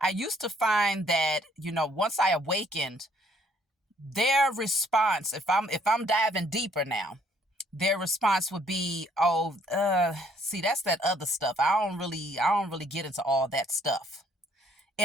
I used to find that, once I awakened, their response, if I'm diving deeper now, their response would be, see, that's that other stuff. I don't really get into all that stuff.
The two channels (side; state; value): both; normal; correlation 0.64